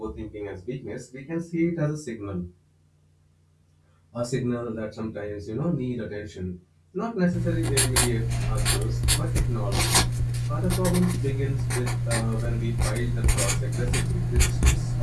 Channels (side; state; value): both; identical; correlation 1.00